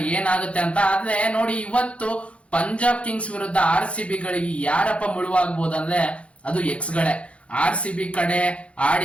ಏನಾಗುತ್ತೆ ಅಂತ. ಆದ್ರೆ ನೋಡಿ, ಇವತ್ತು ಪಂಜಾಬ್ ಕಿಂಗ್ಸ್ ವಿರುದ್ಧ RCB ಗಳಿಗೆ ಯಾರಪ್ಪ ಮುಳುವಾಗಬಹುದು ಅಂದ್ರೆ ಅದು ಎಕ್ಸ್ ಗಳೇ. RCB ಕಡೆ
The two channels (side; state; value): right; late; 0.062 ms